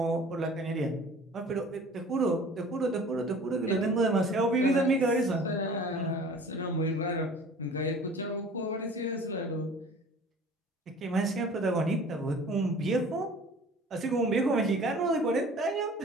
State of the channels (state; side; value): normal; both; correlation 0.46